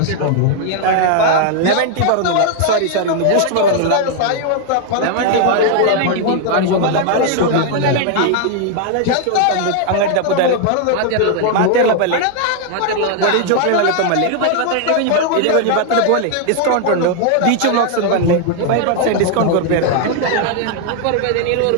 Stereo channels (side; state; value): both; different; correlation 0.00